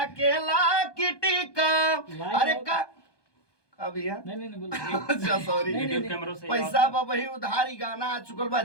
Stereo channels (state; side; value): late; right; 1.2 ms